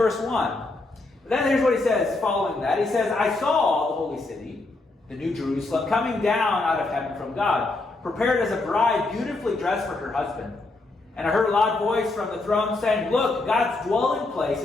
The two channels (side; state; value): right; quieter; 3.2 dB